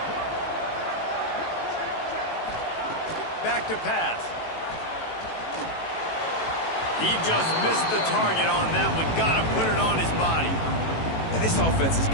Back to pass. He just missed the target on that one. Got to put it on his body. And this offense has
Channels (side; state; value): right; late; 18 ms